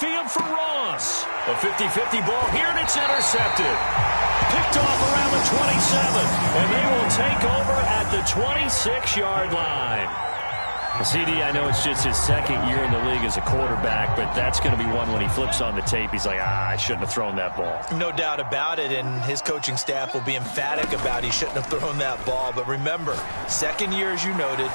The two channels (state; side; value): inverted; both; correlation -1.00